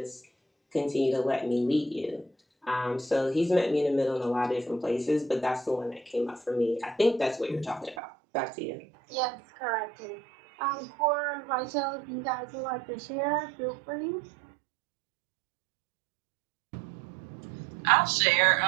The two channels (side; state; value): left; drops out; at 8.0 s